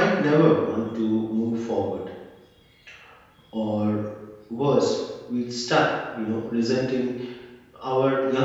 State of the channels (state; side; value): identical; both; correlation 1.00